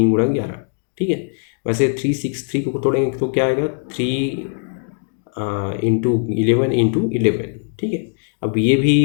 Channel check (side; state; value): right; silent; digital silence